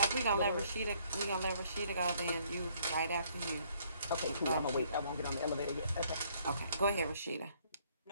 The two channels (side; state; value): both; inverted; correlation -0.65